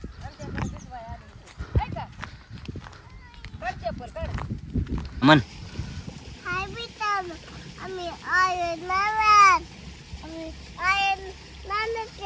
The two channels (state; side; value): identical; both; correlation 1.00